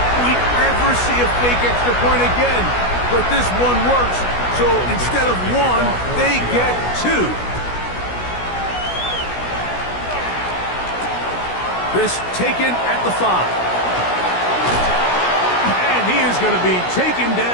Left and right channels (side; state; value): right; late; 16 ms